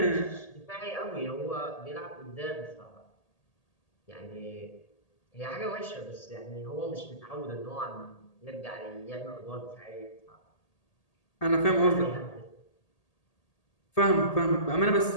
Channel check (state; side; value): late; right; 1.8 ms